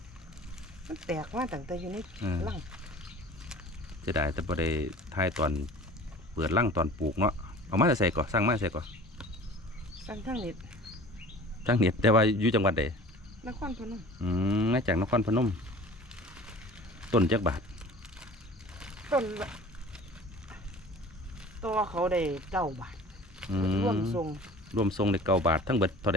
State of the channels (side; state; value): both; normal; correlation 0.44